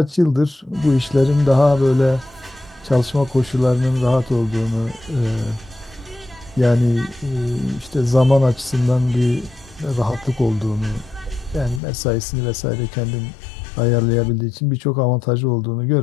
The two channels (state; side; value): drops out; right; at 11.8 s